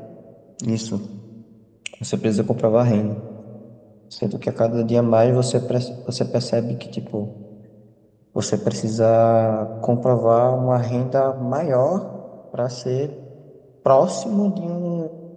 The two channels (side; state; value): both; identical; correlation 1.00